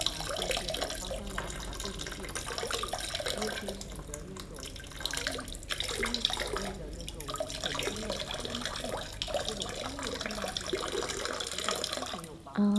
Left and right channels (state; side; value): identical; both; correlation 1.00